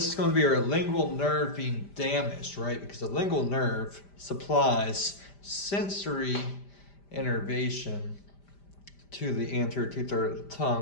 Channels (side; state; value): right; late; 5.0 ms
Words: is going to be our lingual nerve being damaged, right? Because the lingual nerve supplies sensory innervation to the anterior two-thirds of the